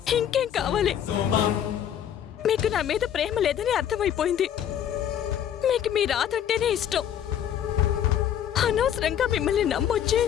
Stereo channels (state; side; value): quieter; right; 9.8 dB